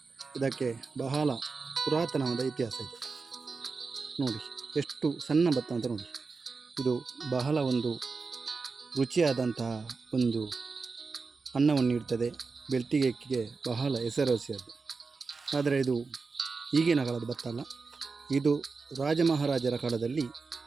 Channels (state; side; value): quieter; left; 4.4 dB